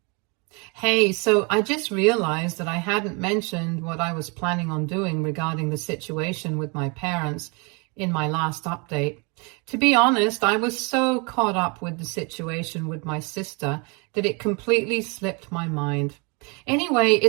Hey, so I just realized that I hadn't mentioned what I was planning on doing regarding the situation with my parents in my last update. To be honest, I was so caught up with the situation with my sister that it completely slipped my mind. Anyway,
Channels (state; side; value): quieter; left; 31.3 dB